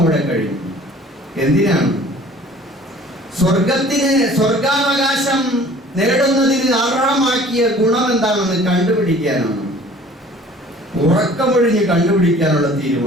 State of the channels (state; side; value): normal; both; correlation 0.50